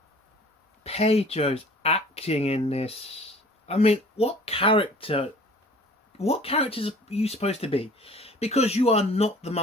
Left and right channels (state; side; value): normal; both; correlation 0.49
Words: Pedro's acting in this. I mean, what characters are you supposed to be? Because you are not the